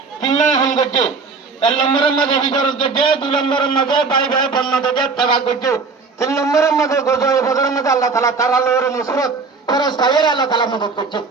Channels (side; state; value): left; quieter; 4.5 dB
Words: তিননা হাম গজে এক নম্বরের মধ্যে হিজরত গজে দুই নম্বরের মধ্যে ভাই ভাই বন্নতে তাবা গজে তিন নম্বরের মধ্যে গজয়ে বদরের মধ্যে আল্লাহ তাআলা তার আলোর নুসরত ফরজ তাইয়ের আল্লাহ তাআলা মদদ করছে